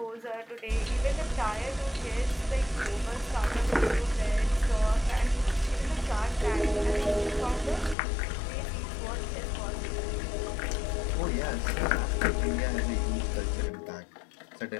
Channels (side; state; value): right; drops out; at 8.0 s